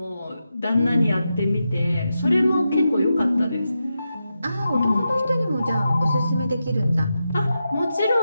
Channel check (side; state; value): both; inverted; correlation -0.89